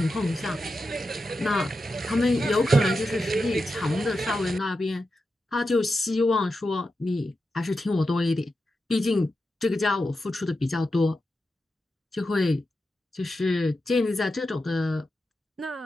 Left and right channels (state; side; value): normal; both; correlation 0.89